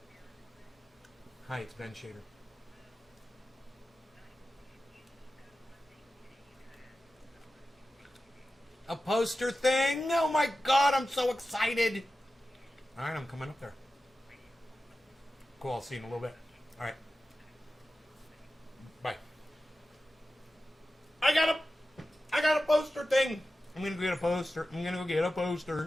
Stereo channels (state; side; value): normal; both; correlation 0.93